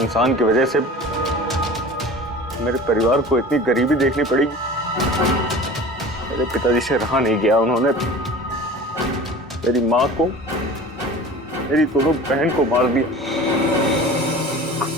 की वजह से मेरे परिवार को इतनी गरीबी देखनी पड़ी। मेरे पिताजी से रहा नहीं गया, उन्होंने मेरी माँ को, मेरी दोनों बहन को मार दिया,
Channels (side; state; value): both; normal; correlation 0.39